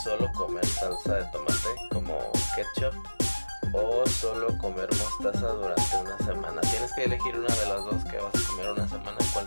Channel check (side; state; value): both; inverted; correlation -1.00